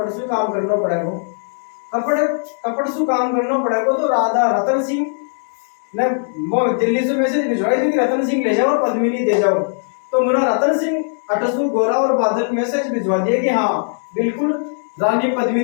से काम करना पड़ेगा कपड़ से काम करना पड़ेगा। तो राधा रतन सिंह ने वो दिल्ली से मैसेज भिजवाई थी कि रतन सिंह ले जाओ और पद्मिनी दे जाओ। तो मुना रतन सिंह अटसू गोरा और बादल मैसेज भिजवा दिए कि हाँ बिल्कुल रानी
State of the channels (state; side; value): silent; right; digital silence